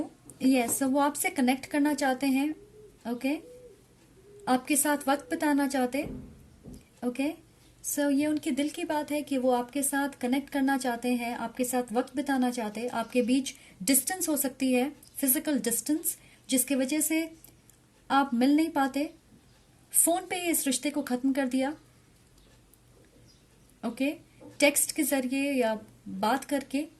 Yes, वो आपसे कनेक्ट करना चाहते हैं। ओके, आपके साथ वक्त बिताना चाहते। ओके, सो ये उनके दिल की बात है कि वो आपके साथ कनेक्ट करना चाहते हैं, आपके साथ वक्त बिताना चाहते हैं। आपके बीच डिस्टेंस हो सकती है, फिजिकल डिस्टेंस, जिसकी वजह से आप मिल नहीं पाते। फोन पे ही इस रिश्ते को खत्म कर दिया। ओके, टेक्स्ट के जरिए या बात करके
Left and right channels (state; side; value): identical; both; correlation 1.00